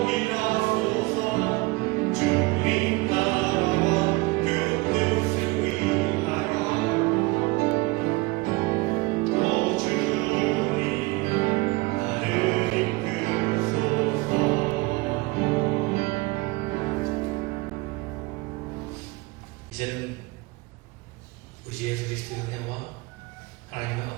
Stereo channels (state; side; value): quieter; left; 23.6 dB